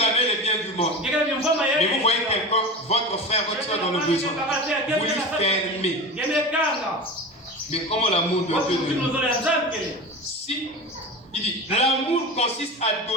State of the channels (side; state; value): both; normal; correlation 0.30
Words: avez les biens du monde. Mais vous voyez quelqu'un, votre frère, votre soeur dans le besoin, vous lui fermez. Mais comment l'amour de Dieu demeure? Si il dit, l'amour consiste à